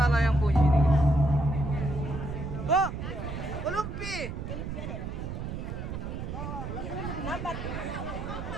yang punya ini. Oh, kelumpi.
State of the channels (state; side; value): noise; right; rumble, 6 dB below the sound